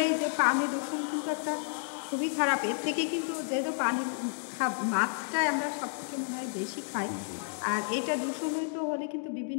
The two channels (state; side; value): silent; right; digital silence